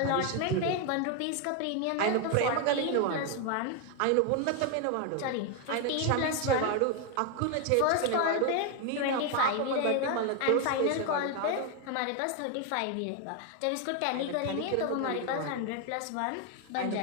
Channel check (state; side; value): different; both; correlation 0.01